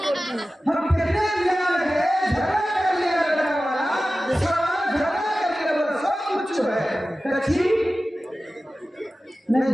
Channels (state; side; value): normal; both; correlation 0.95